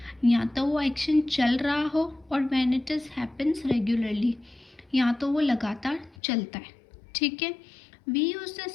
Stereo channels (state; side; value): drops out; right; at 6.2 s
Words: या तो वो एक्शन चल रहा हो और when it is happens regularly, या तो वो लगातार चलता है। ठीक है, we use the